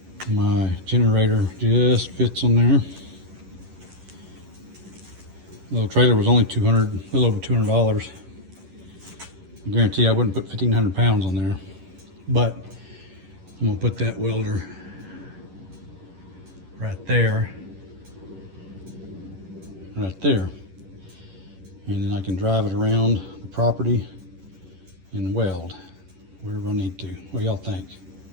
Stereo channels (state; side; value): late; left; 11 ms